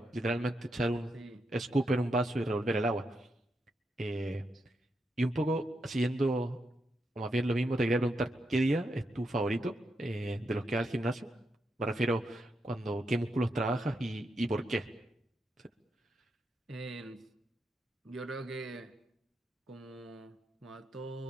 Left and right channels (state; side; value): normal; both; correlation 0.83